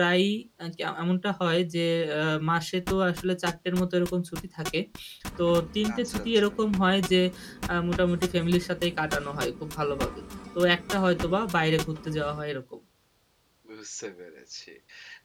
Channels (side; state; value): both; identical; correlation 1.00